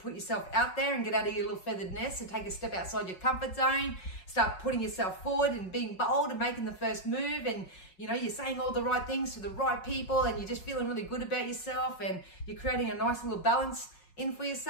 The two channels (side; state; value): right; late; 5.4 ms